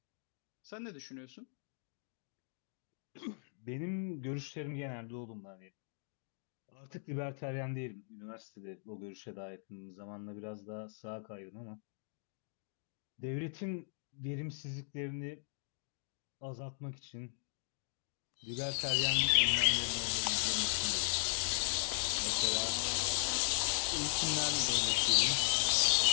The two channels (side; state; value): right; silent; digital silence